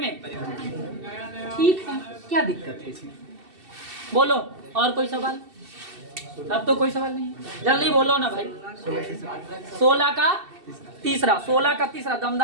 ठीक है, क्या दिक्कत है इसमें? बोलो और कोई सवाल? अब तो कोई सवाल नहीं, जल्दी बोलो ना भाई। 16 का तीसरा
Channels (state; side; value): late; left; 2.7 ms